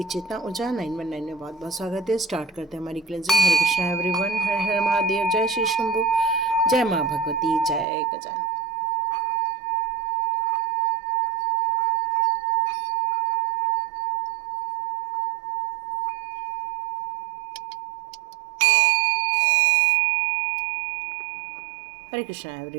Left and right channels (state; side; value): drops out; left; at 7.9 s